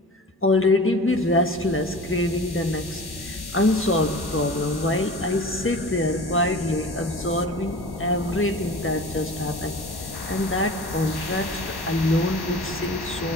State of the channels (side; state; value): both; normal; correlation 0.37